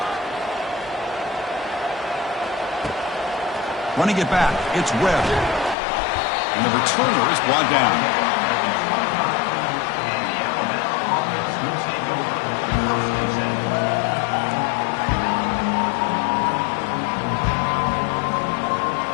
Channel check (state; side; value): drops out; right; at 5.8 s